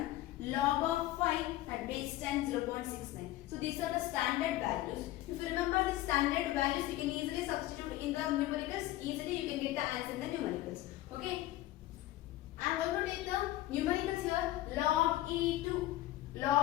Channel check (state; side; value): quieter; right; 15.7 dB